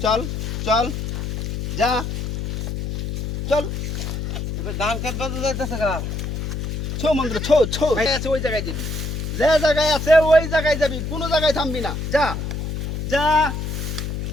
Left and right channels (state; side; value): noise; left; hum, 3 dB below the sound